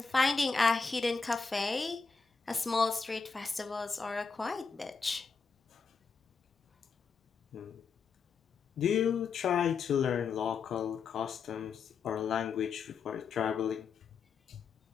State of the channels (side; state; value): right; quieter; 5.2 dB